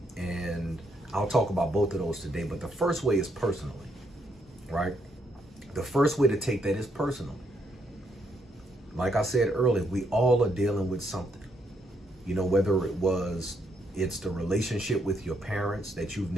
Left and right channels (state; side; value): normal; both; correlation 0.75